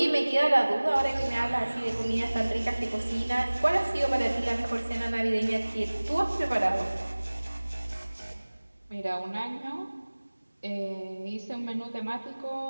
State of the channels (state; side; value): inverted; both; correlation -1.00